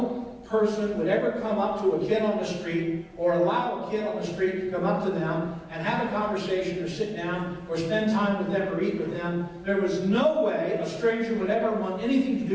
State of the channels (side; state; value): both; identical; correlation 1.00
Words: person would ever come up to a kid on the street or allow a kid on the street to come up to them and have a conversation or sit down or spend time with them or eat with them. There was no way a stranger would ever want anything to